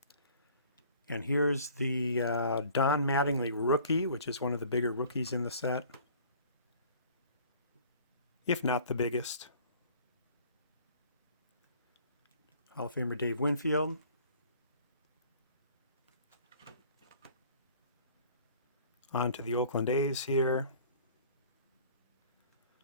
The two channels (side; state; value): both; inverted; correlation -0.51